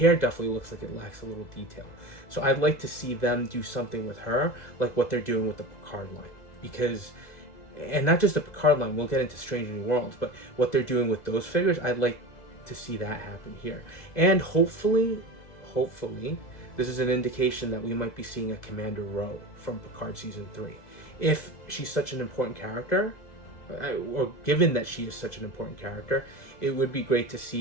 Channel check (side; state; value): right; late; 2.0 ms